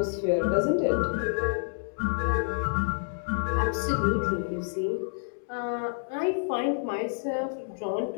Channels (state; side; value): silent; right; digital silence